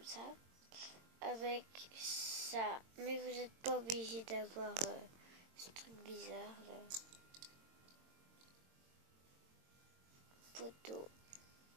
ça avec ça, mais vous n'êtes pas obligé d'avoir ce truc bizarre là. Poteau.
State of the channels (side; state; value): left; late; 22 ms